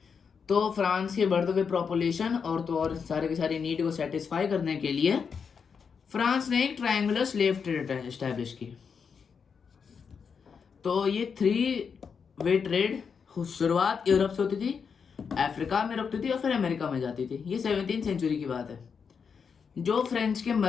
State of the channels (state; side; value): quieter; right; 6.2 dB